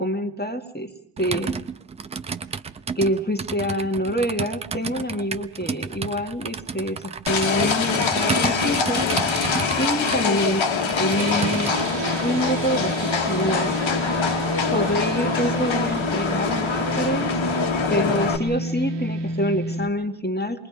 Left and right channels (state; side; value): normal; both; correlation 0.21